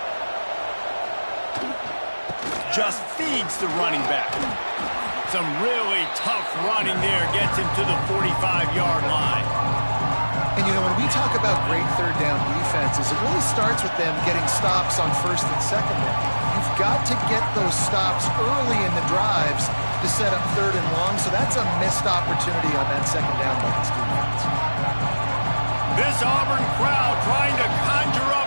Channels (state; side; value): inverted; both; correlation -1.00